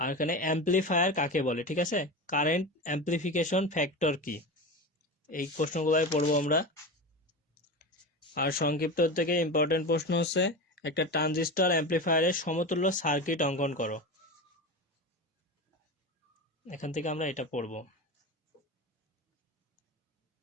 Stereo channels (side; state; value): both; normal; correlation 0.25